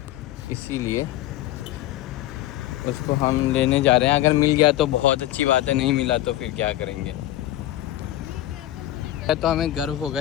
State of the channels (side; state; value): right; quieter; 14.6 dB